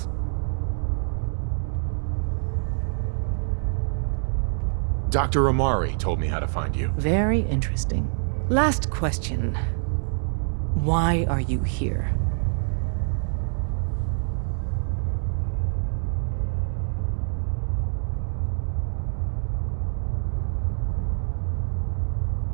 Dr. Amari told me how to find you. Very interesting. Last question. Why are you here?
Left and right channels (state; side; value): silent; left; digital silence